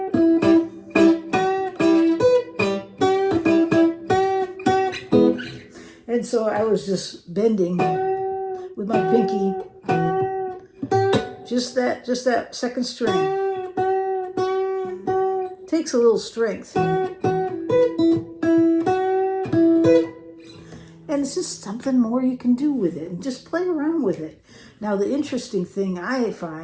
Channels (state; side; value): identical; both; correlation 1.00